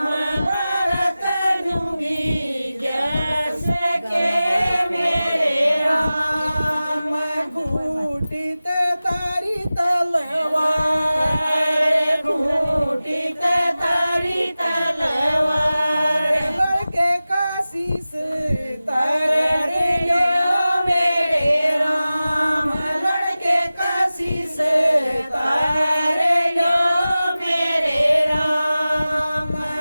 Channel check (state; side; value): inverted; both; correlation -0.96